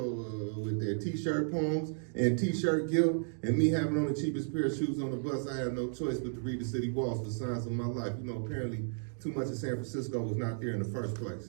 With their t-shirt poems and t-shirt guilt and me having on the cheapest pair of shoes on the bus, I had no choice but to read the city walls for signs of my life. You know, apparently too much of San Francisco was not there in the first place.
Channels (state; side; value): silent; left; digital silence